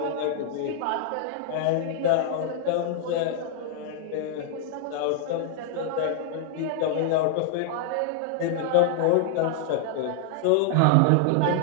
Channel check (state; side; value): different; both; correlation 0.00